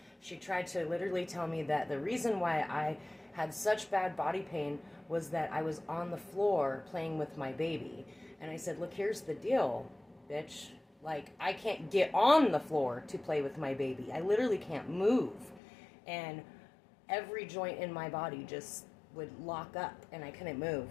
She tried to literally tell me that the reason why I had such bad body pain was that I was on the floor playing with my baby. And I said, look, here's the deal, bitch. Like, I can't get on the floor to play with my baby. I literally can't move. And every joint in my body just would lock up and I couldn't move.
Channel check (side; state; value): right; drops out; at 15.6 s